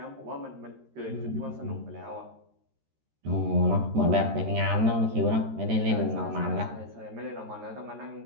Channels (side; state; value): left; late; 13 ms